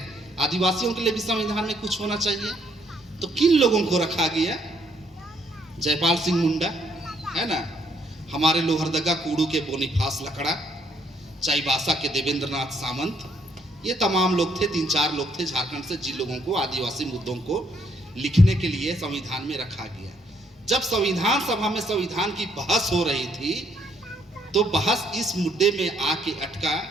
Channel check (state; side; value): normal; both; correlation 0.70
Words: आदिवासियों के लिए भी संविधान में कुछ होना चाहिए, तो किन लोगों को रखा गया? जयपाल सिंह मुंडा, है ना, हमारे लोहरदगा कूड़ू के बोनीफास लकड़ा, चाईबासा के देवेंद्र नाथ सामंत, ये तमाम लोग थे, 3-4 लोग थे झारखंड से, जिन लोगों को आदिवासी मुद्दों को लिखने के लिए संविधान में रखा गया। जब संविधान सभा में संविधान की बहस हो रही थी तो बहस इस मुद्दे में आके अटका